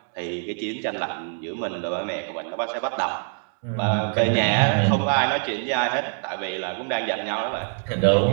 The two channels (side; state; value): left; silent; 62 dB below the other